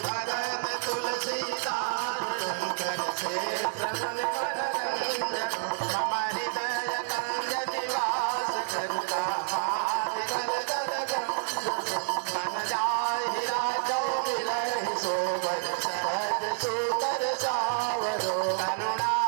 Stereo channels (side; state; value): left; silent; 57 dB below the other